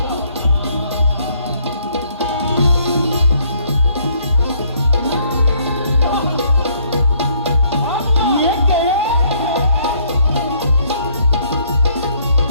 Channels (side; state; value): both; inverted; correlation -0.66